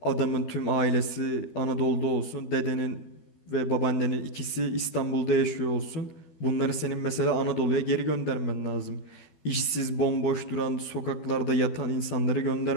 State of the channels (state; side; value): late; right; 12 ms